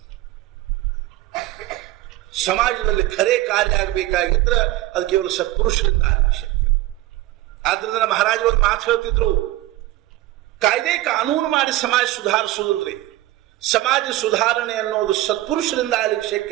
ಸಮಾಜದಲ್ಲಿ ಖರೆ ಕಾರ್ಯ ಆಗಬೇಕಾಗಿದ್ರೆ ಅದು ಕೇವಲ ಸತ್ಪುರುಷರಿಂದ ಆಗಬೇಕು. ಆದ್ರಿಂದ ಮಹಾರಾಜರು ಒಂದು ಮಾತು ಹೇಳ್ತಿದ್ರು, ಕಾಯ್ದೆ ಕಾನೂನು ಮಾಡಿ ಸಮಾಜ ಸುಧಾರಿಸುವುದಿಲ್ರಿ, ಸಮಾಜ ಸುಧಾರಣೆ ಅನ್ನೋದು ಸತ್ಪುರುಷರಿಂದ ಆಗ್ಲಿಕ್ಕೆ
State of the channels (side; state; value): left; quieter; 16.8 dB